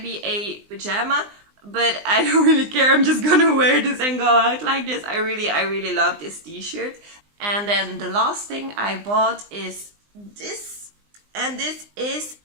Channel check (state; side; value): late; left; 20 ms